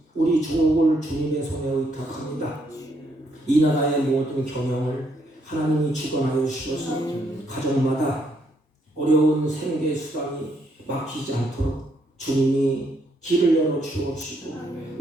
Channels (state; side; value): normal; both; correlation 0.73